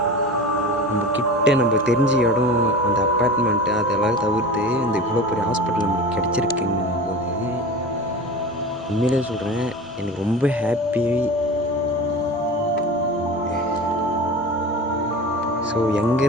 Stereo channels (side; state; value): both; normal; correlation 0.33